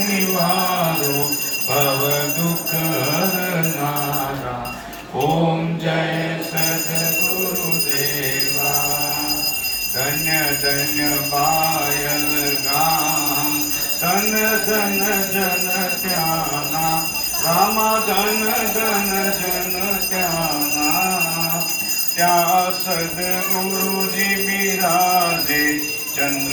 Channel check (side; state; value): both; identical; correlation 1.00